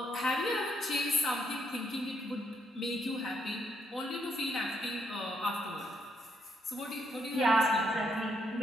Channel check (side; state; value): both; normal; correlation 0.74